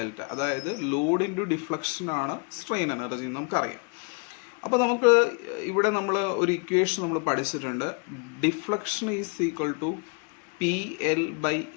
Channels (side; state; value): right; quieter; 34.9 dB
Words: അതായത് ലോഡ് ഇൻറ്റു ഡിഫ്ലക്ഷൻ ആണ് സ്ട്രെയിൻ എനർജി നമുക്കറിയാം. അപ്പോൾ നമുക്ക് ഇവിടെ നമ്മൾ ഒരു ഇക്വേഷൻ നമ്മൾ പഠിച്ചിട്ടുണ്ട്. Deflection is equal to PL by